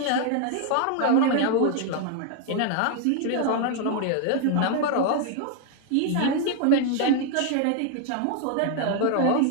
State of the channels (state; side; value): different; both; correlation 0.00